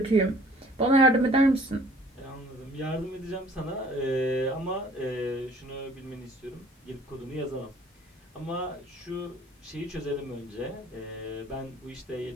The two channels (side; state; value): both; normal; correlation 0.54